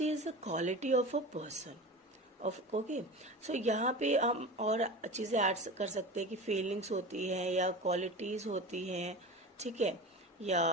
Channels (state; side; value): normal; both; correlation 0.31